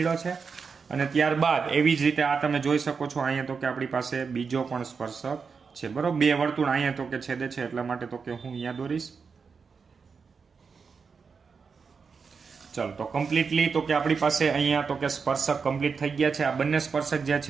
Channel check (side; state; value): left; quieter; 5.4 dB